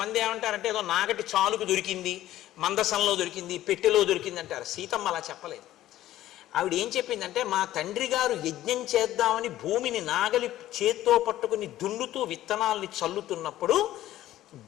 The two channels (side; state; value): right; quieter; 14.0 dB